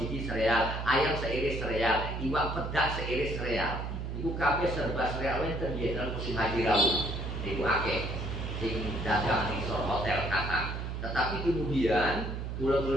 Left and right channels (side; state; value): right; noise; hum, 5 dB below the sound